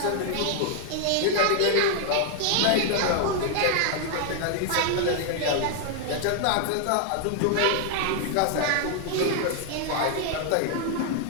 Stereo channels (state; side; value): different; both; correlation 0.00